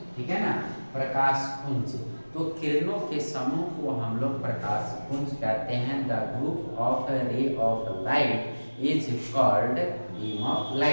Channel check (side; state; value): both; inverted; correlation -1.00